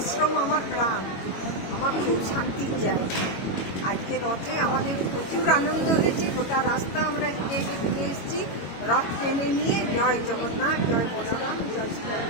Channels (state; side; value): late; right; 22 ms